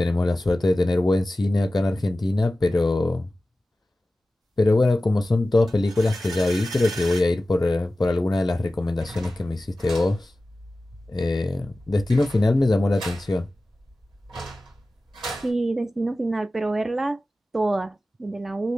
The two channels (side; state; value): both; normal; correlation 0.96